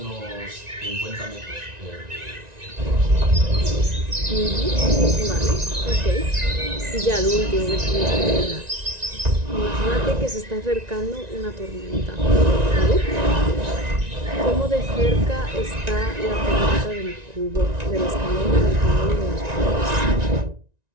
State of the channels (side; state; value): left; late; 1.9 ms